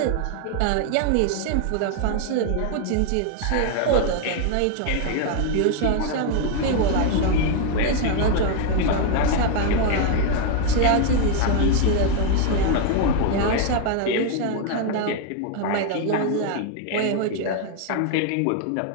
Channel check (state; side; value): different; both; correlation 0.01